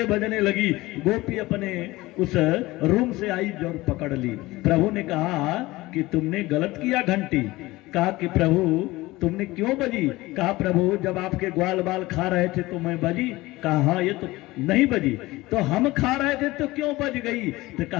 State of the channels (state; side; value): quieter; right; 19.6 dB